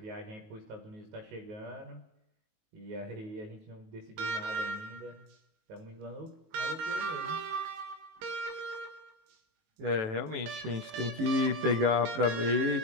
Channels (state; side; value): late; left; 19 ms